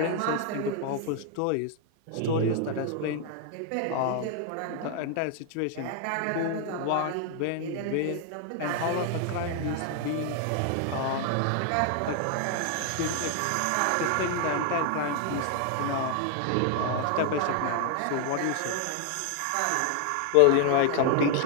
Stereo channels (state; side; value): different; both; correlation 0.00